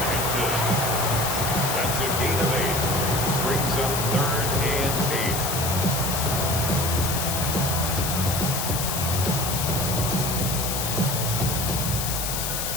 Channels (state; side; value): noise; left; hiss, 2 dB below the sound